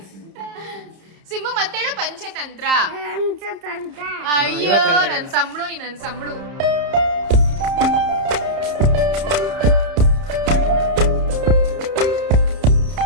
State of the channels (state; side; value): late; left; 30 ms